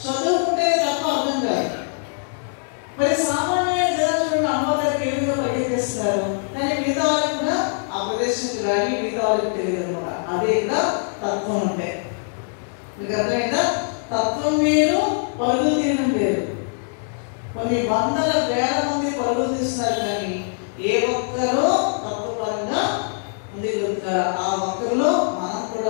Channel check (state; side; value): silent; right; 64 dB below the other